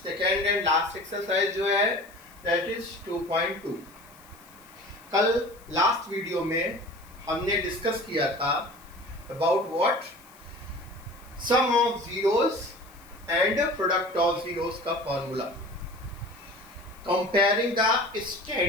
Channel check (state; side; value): noise; left; hiss, 25 dB below the sound